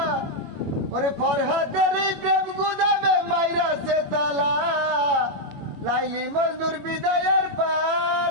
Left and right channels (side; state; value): left; late; 21 ms